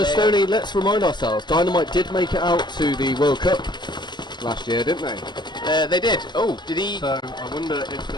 Stoney, let's remind ourselves, Dynamite did make it out to the World Cup last year, didn't they? They did. Oh, did he? So I wonder if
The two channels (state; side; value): late; right; 0.21 ms